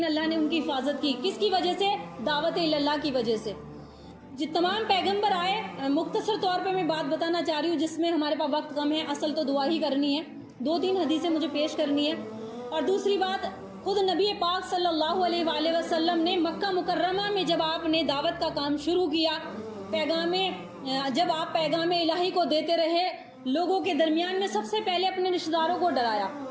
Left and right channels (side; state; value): both; identical; correlation 1.00